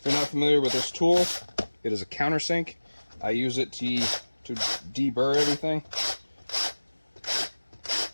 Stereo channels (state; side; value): inverted; both; correlation -1.00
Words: you're not familiar with this tool, it is a countersink. I use it to deburr everything.